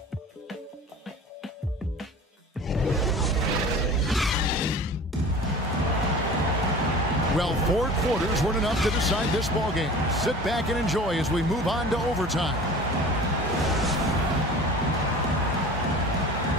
Well, 4 quarters weren't enough to decide this ballgame. Sit back and enjoy as we move on to overtime.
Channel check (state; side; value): normal; both; correlation 0.40